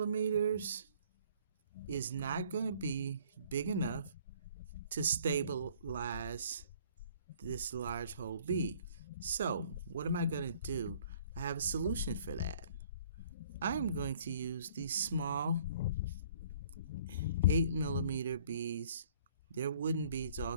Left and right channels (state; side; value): inverted; both; correlation -0.56